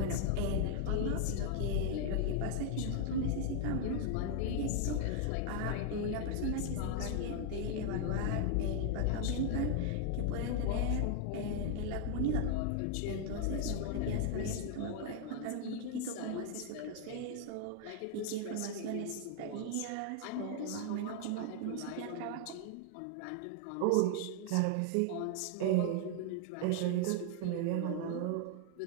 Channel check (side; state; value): both; different; correlation 0.00